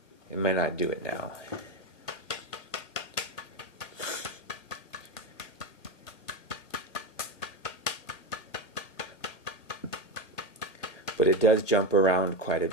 It may not do it now. But it does jump around quite a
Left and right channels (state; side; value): late; right; 1.9 ms